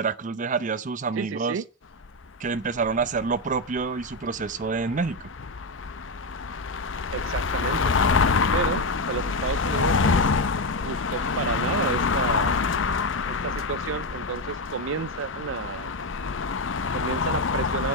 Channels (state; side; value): normal; both; correlation 0.09